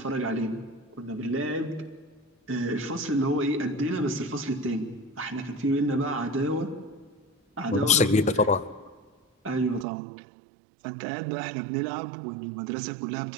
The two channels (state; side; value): drops out; left; at 9.9 s